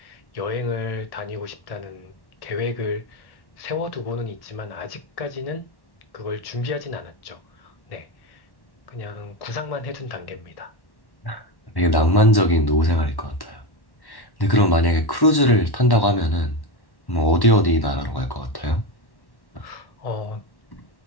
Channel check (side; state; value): right; late; 1.1 ms